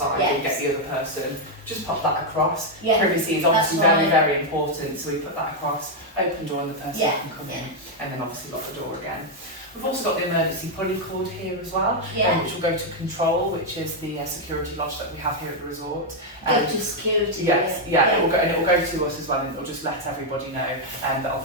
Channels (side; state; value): both; normal; correlation 0.00